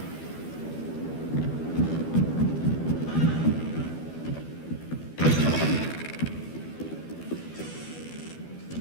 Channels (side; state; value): right; late; 12 ms